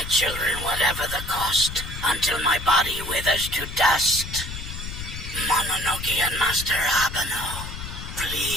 children whatever the cost, until my body withers to dust. Mononoke and Master Abeno,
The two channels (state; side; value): noise; left; rumble, 8 dB below the sound